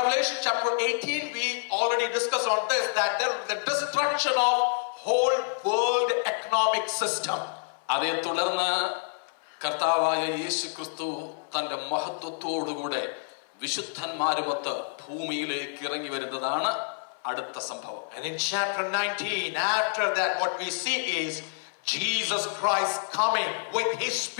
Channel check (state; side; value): silent; right; 59 dB below the other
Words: chapter 18, we already discussed on this, that there is the destruction of whole world economic system. അതേ തുടർന്ന് കർത്താവായ യേശു ക്രിസ്തു തന്റെ മഹത്വത്തോടുകൂടെ വിശുദ്ധന്മാരുമൊത്ത് ഭൂമിയിലേക്ക് ഇറങ്ങി വരുന്നതാണ് അടുത്ത സംഭവം. And in chapter 19, after that, what we see is Jesus Christ coming with his